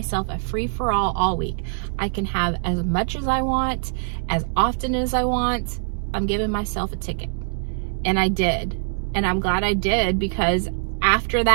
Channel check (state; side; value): silent; left; digital silence